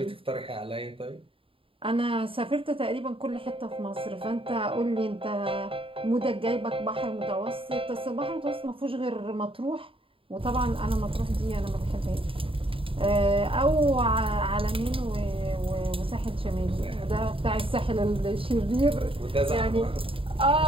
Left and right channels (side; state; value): left; late; 0.26 ms